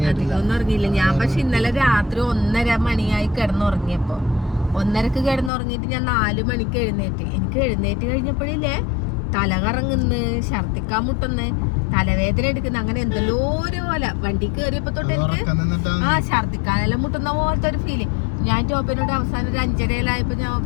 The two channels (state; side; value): drops out; right; at 5.5 s